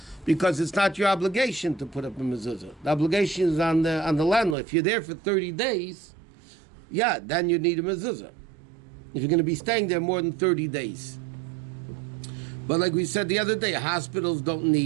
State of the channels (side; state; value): left; drops out; at 4.5 s